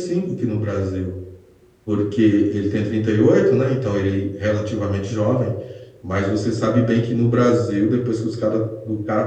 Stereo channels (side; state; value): both; identical; correlation 1.00